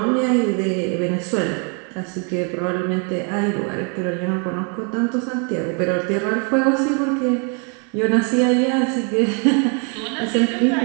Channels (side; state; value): left; quieter; 38.4 dB